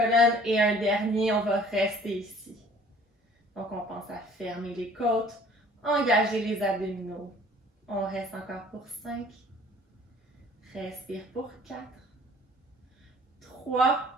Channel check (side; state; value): both; normal; correlation 0.52